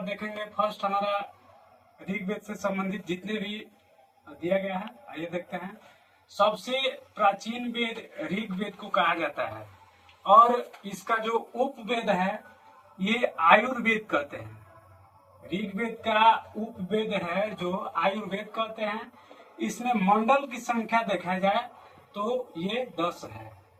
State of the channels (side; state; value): both; identical; correlation 1.00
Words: देखेंगे फर्स्ट हमारा ऋग्वेद से संबंधित जितने भी दिया गया है, आइए देखते हैं। सबसे प्राचीन वेद ऋग्वेद को कहा जाता है, और इसका जो उपवेद है ये आयुर्वेद कहते हैं। ऋग्वेद का उपवेद है जो आयुर्वेद कहते हैं। इसमें मंडल की संख्या देखा जाए तो ये 10 है,